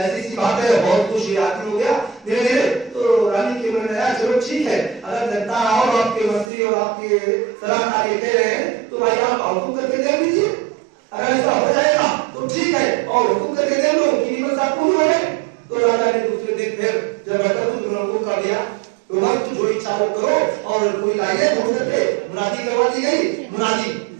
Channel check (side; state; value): left; drops out; at 6.5 s